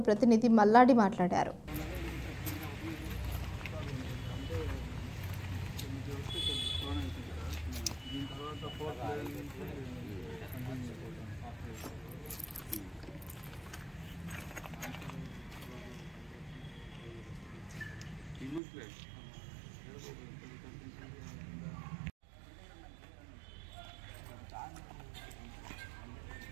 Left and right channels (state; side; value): drops out; left; at 18.6 s